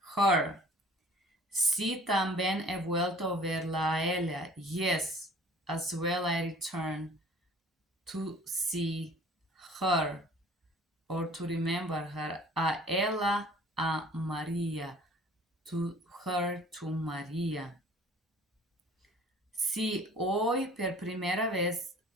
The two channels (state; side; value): normal; both; correlation 0.50